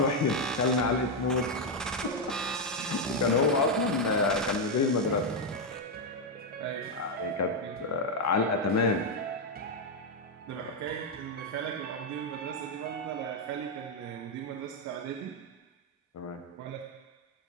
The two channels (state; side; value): normal; both; correlation 0.03